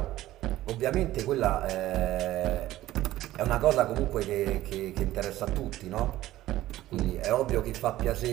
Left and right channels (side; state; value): left; quieter; 15.2 dB